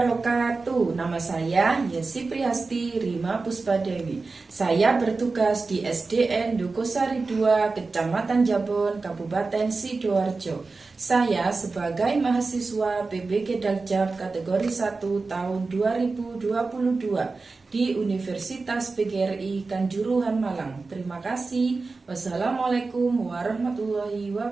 Nama saya Yesi Priyasti Rima Puspadewi. Saya bertugas di SDN Dukosari 2, Kecamatan Jabon, Kabupaten Sidoarjo. Saya sebagai mahasiswa PBG Daljab kategori 1 tahun 2022 di Universitas PGRI Kanjuruhan Malang. Terima kasih. Wassalamualaikum warahmatullahi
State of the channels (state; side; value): quieter; left; 3.9 dB